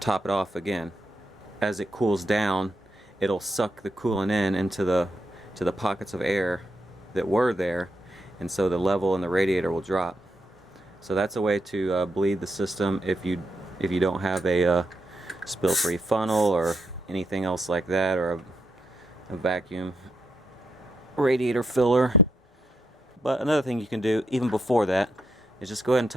it off again. As it cools down, it'll suck the coolant into the pockets of air that were there, and so the level in the radiator will drop. So that's a way to bleed the system if you don't have a spill-free funnel or anything else like that, or a vacuum radiator filler. But another thing you can do even before that is just go ahead and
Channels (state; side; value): normal; both; correlation 0.81